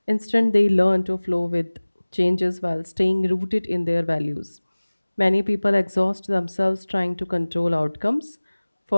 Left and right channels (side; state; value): both; inverted; correlation -1.00